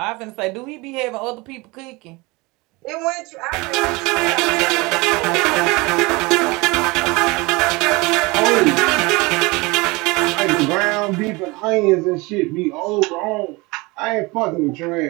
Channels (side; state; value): left; quieter; 24.5 dB